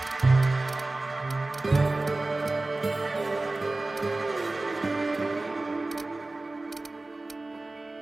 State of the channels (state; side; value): quieter; left; 3.0 dB